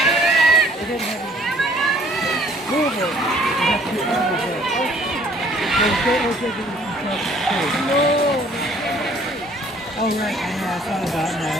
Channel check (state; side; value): normal; both; correlation 0.58